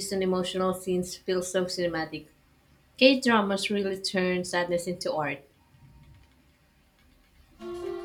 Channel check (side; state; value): both; identical; correlation 1.00